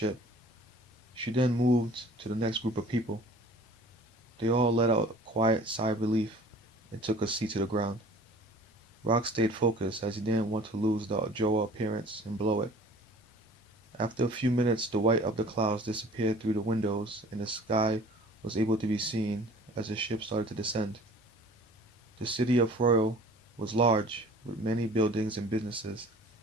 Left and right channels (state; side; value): normal; both; correlation 0.47